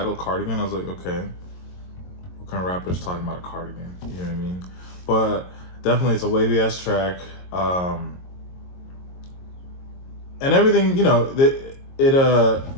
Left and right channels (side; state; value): right; late; 22 ms